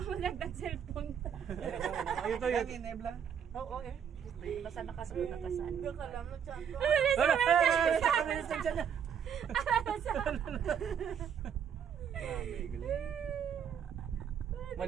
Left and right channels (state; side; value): quieter; left; 8.1 dB